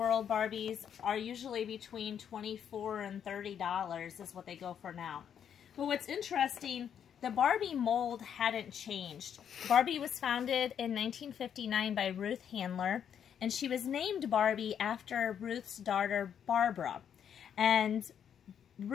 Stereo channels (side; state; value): right; quieter; 8.5 dB